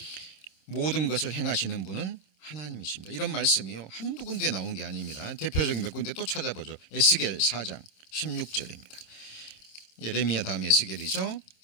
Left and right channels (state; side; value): late; right; 26 ms